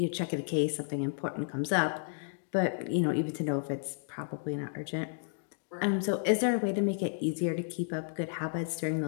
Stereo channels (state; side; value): silent; right; digital silence